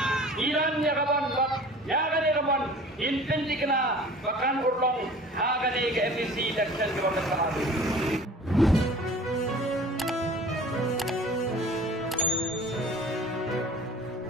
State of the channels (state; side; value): normal; both; correlation 0.44